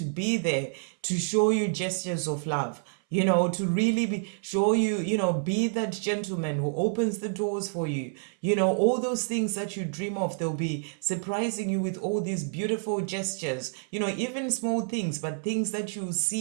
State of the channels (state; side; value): silent; left; 59 dB below the other